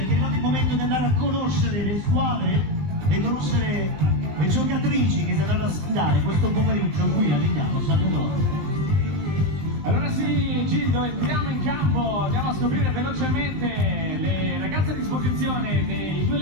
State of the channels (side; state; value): left; late; 20 ms